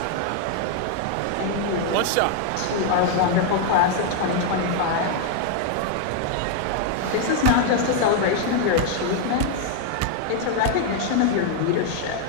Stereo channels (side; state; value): both; different; correlation 0.00